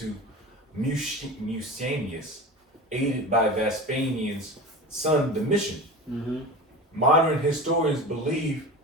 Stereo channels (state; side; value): normal; both; correlation 0.31